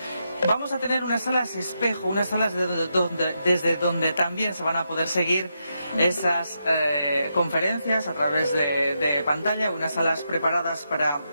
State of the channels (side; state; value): both; inverted; correlation -0.83